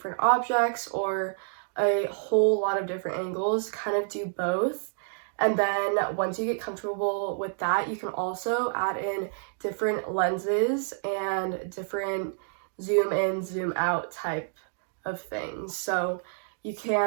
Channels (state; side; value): silent; left; digital silence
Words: objects or a whole lot of different angles, kind of do both. And then once you get comfortable with that, you can also add in different lenses and different zoom in, zoom out type of things. So you